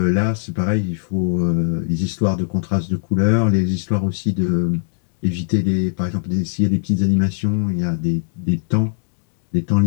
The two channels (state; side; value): silent; right; digital silence